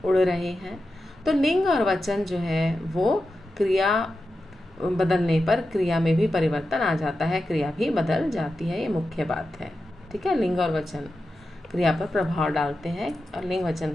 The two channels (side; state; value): both; normal; correlation 0.91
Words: उड़ रहे हैं। तो लिंग और वचन जो है वो क्रिया बदलने पर क्रिया में भी परिवर्तन आ जाता है, क्रिया भी बदल जाती है, ये मुख्य बात है। ठीक है, लिंग और वचन क्रिया पर प्रभाव डालते हैं और लिंग